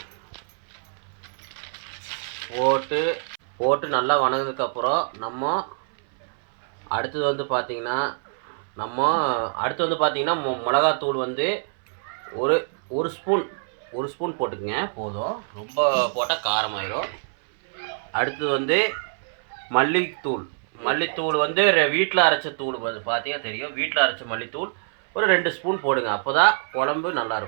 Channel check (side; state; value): left; silent; 61 dB below the other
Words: போட்டு நல்லா வணங்கினதுக்கப்புறம் நம்ம அடுத்தது வந்து பார்த்திங்கன்னா மிளகாத்தூள் வந்து ஒரு ஸ்பூன் போட்டுக்குங்க போதும். ரொம்ப போட்டால் காரமாயிரும். அடுத்தது வந்து மல்லித்தூள் வந்து வீட்டில் அரைச்ச தூள் பார்த்தீங்கன்னா தெரியும். வீட்டில் அரைச்ச மல்லித்தூள் ஒரு 2 ஸ்பூன் போடுங்க. அப்போ தான் குழம்பு